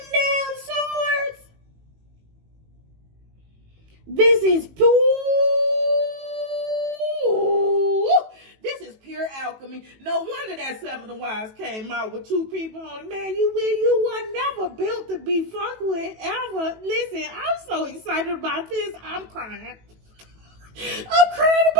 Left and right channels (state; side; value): late; left; 18 ms